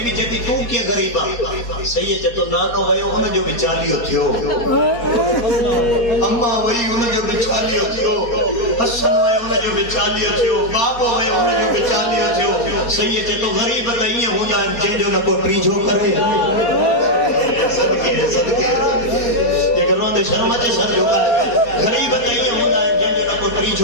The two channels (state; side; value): late; right; 4.2 ms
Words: بی جتی تو کیا غریبا سید چتو نانو ویو ان جو بچالیو تھیو اما وی ان جو بچالیو تھیو حسن ویو ان جو بچالیو تھیو بابو ویو ان جو بچالیو تھیو سید چتو غریب تائیں ہوندا ہے جن جو نہ کو ٹریجو کرے صدقے یہ گھروں دے شرم اچھے سر جو ہے غریب تائیں ہوندا ہے جن جو نہ کو